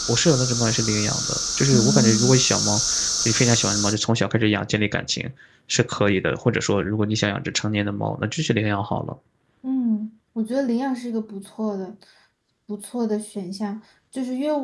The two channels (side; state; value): both; identical; correlation 1.00